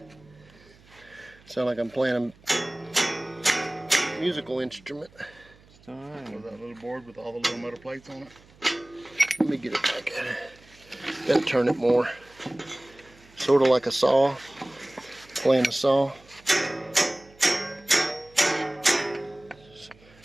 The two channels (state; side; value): noise; right; hum, 27 dB below the sound